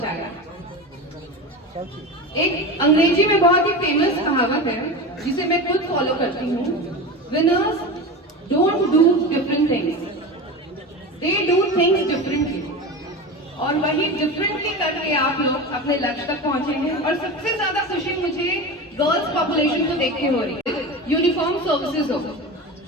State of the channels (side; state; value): both; normal; correlation 0.27